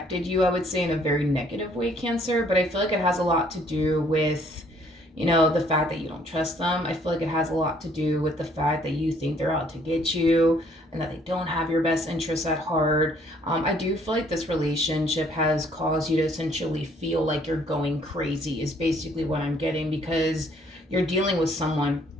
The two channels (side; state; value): both; normal; correlation 0.62